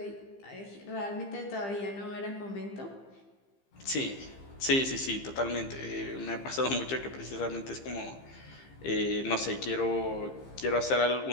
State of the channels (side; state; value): right; late; 15 ms